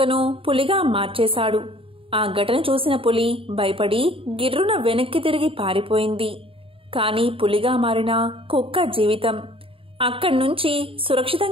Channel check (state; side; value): late; left; 0.26 ms